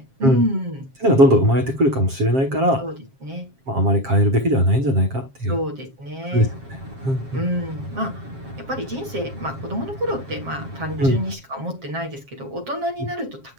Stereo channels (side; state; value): left; late; 7.5 ms